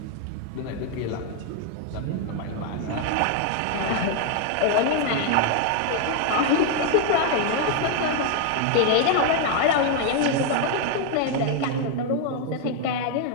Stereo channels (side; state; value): both; different; correlation 0.00